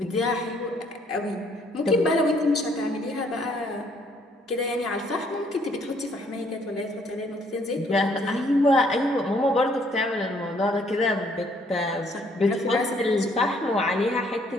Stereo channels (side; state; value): both; normal; correlation 0.65